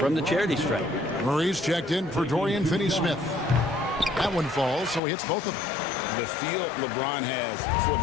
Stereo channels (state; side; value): drops out; right; at 5.0 s